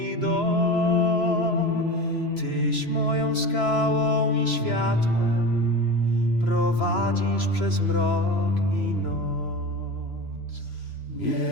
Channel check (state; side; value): late; right; 3.0 ms